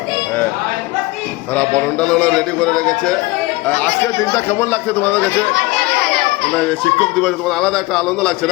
তারা বরণডাল রেডি করে রেখেছে। আজকের দিনটা কেমন লাগছে তোমাদের কাছে? মানে শিক্ষক দিবসে তোমার আলাদা একটা আনন্দ লাগছে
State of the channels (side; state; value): right; quieter; 21.2 dB